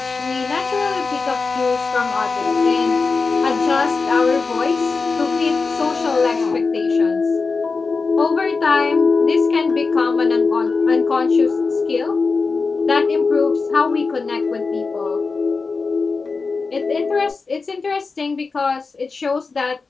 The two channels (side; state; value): right; quieter; 4.4 dB